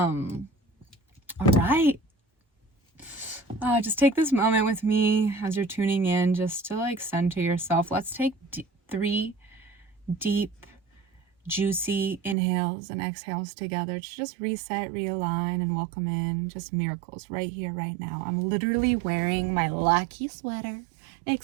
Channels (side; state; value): left; drops out; at 12.4 s